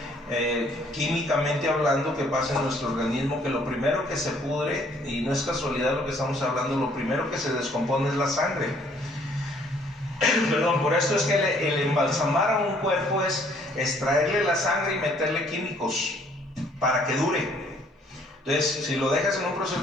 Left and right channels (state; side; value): normal; both; correlation 0.62